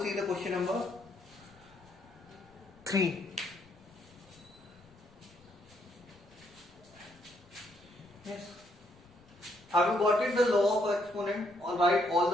see the question number 3. Yes. Have you got it, the law of exponent? Or write all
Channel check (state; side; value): noise; left; rumble, 27 dB below the sound